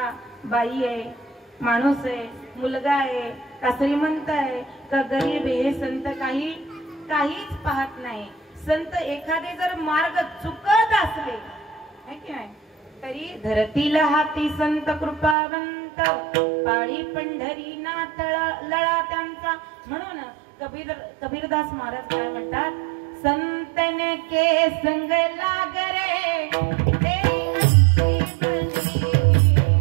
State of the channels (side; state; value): left; drops out; at 15.4 s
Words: बाई आहे, माणूस आहे, मुलगा आहे, का श्रीमंत आहे का गरीब आहे, हे संत काहीच पाहत नाही. संत एखादे जर मार्ग चुकत असले की नाही तरी धरतीला हाती संत कृपावंत, पाळी पंढरी नाथ लळा त्यांचा. म्हणून कबीरदास महाराज काय म्हणतात? संतन के संग लाग रे तेरी अच्छी बनी,